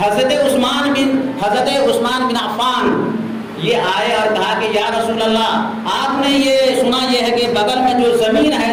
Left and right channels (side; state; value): both; identical; correlation 1.00